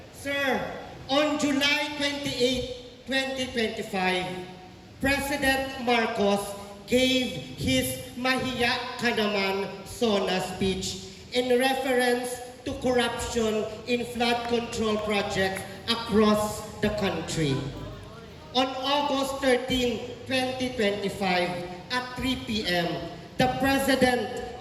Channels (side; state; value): both; identical; correlation 1.00